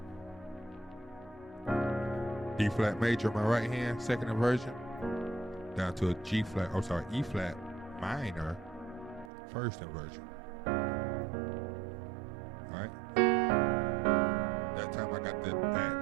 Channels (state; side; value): drops out; left; at 9.3 s